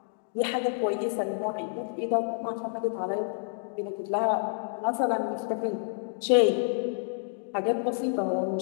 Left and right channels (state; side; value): silent; right; digital silence